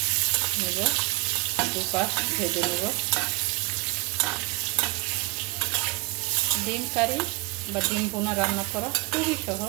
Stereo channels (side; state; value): left; quieter; 26.5 dB